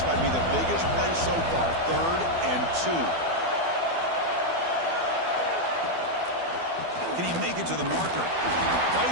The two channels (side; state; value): left; late; 12 ms